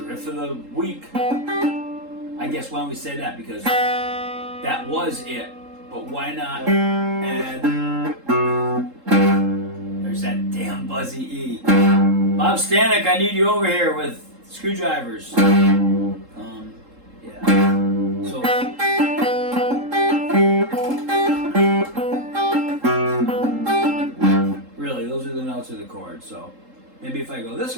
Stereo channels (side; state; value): left; late; 3.7 ms